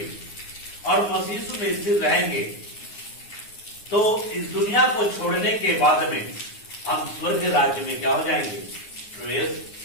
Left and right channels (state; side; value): late; right; 9.6 ms